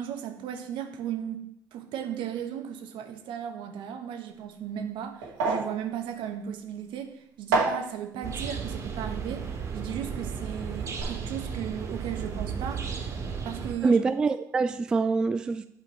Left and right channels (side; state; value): left; quieter; 5.0 dB